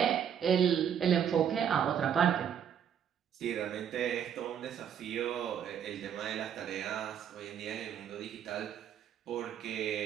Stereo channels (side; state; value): left; quieter; 8.6 dB